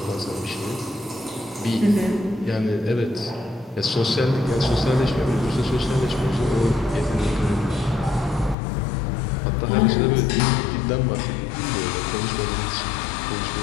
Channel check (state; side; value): drops out; right; at 8.6 s